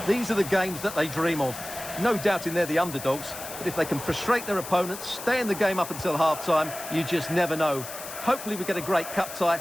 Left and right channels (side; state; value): left; noise; hiss, 11 dB below the sound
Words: These are the games that they dream of. No doubting they're the underdogs, but if they can frustrate their opponents, stay in the game up until half-time, you just never know. Hopefully we get a great cup tie